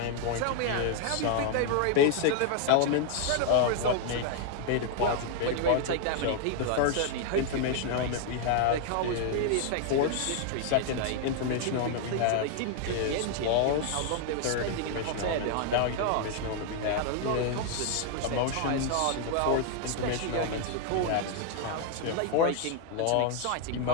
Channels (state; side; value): different; both; correlation 0.00